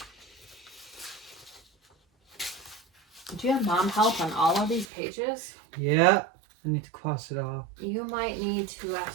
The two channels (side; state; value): left; drops out; at 4.9 s